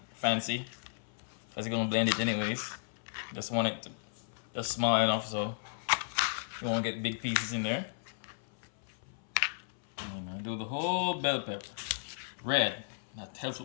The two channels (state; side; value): silent; right; 55 dB below the other